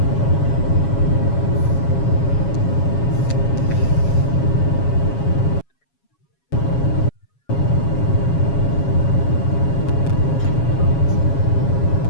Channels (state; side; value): late; right; 7.2 ms